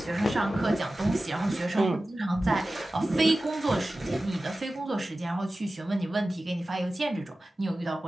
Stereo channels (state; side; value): normal; both; correlation 0.95